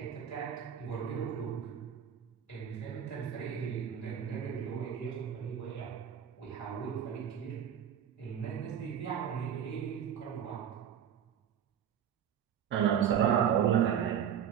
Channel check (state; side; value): quieter; left; 8.8 dB